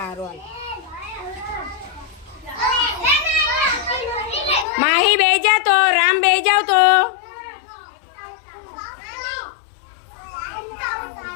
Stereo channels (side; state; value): right; drops out; at 4.7 s